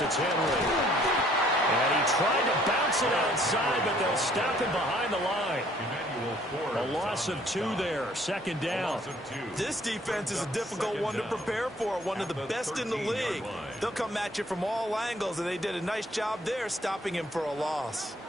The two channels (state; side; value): normal; both; correlation 0.61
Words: it's Henry. And he tried to bounce it outside, but they'll stop him behind the line. A loss of 2 there, 2nd down. This defense is a difficult one to prepare for, one of the best in the league. They'll come at you from all angles, and they did a nice job there stopping him for a loss.